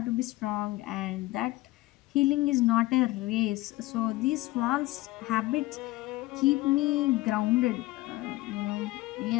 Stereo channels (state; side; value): quieter; right; 18.9 dB